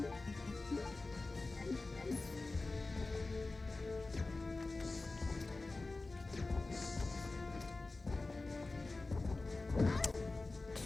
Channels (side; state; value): right; quieter; 3.4 dB